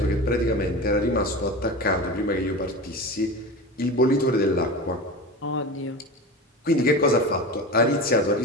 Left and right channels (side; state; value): both; normal; correlation 0.29